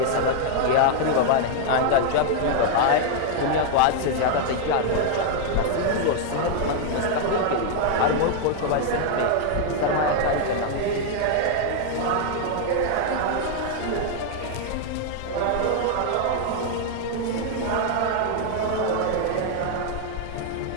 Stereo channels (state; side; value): different; both; correlation 0.00